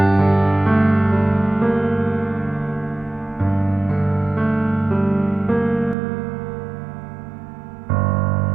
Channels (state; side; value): drops out; left; at 6.0 s